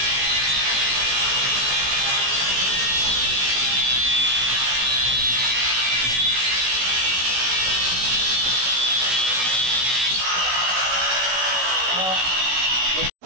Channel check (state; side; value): late; left; 16 ms